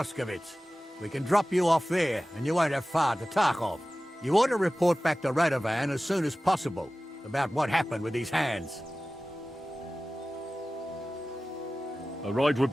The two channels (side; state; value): both; normal; correlation 0.97